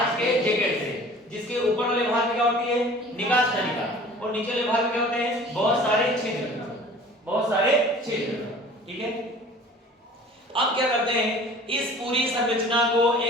के जैकेट से, जिसके ऊपर वाले भाग में क्या होती है, निकास नलिका, और नीचे वाले भाग में क्या होते हैं, बहुत सारे छिद्र। ठीक है, अब क्या करते हैं, इस पूरी संरचना को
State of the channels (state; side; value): normal; both; correlation 0.46